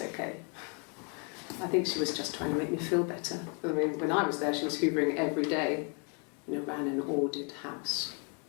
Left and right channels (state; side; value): quieter; right; 37.1 dB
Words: I think she was just trying to make me feel better. I mean, when I was there, she was hoovering every day, you know, ran an ordered house.